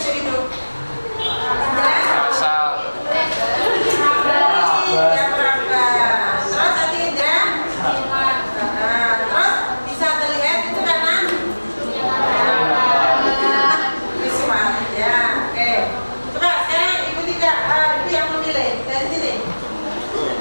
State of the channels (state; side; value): inverted; both; correlation -1.00